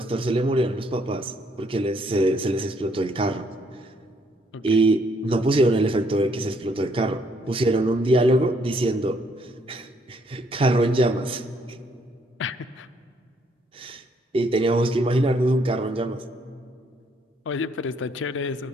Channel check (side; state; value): both; normal; correlation 0.69